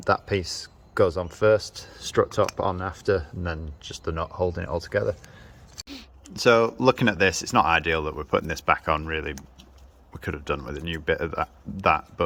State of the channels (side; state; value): both; identical; correlation 1.00